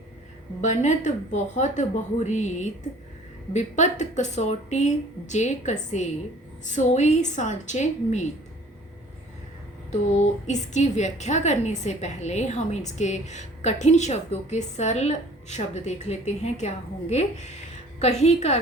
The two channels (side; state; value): both; normal; correlation 0.51